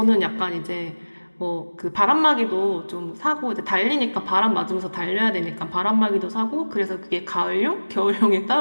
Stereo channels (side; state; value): both; inverted; correlation -1.00